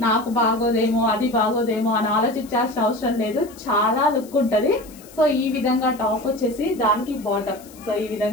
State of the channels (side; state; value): left; noise; hiss, 22 dB below the sound